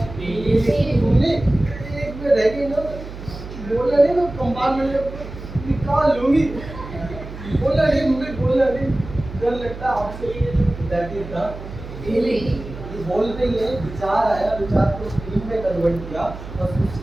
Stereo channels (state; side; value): noise; right; hum, 12 dB below the sound